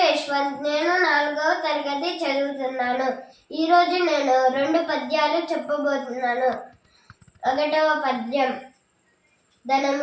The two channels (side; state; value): both; identical; correlation 1.00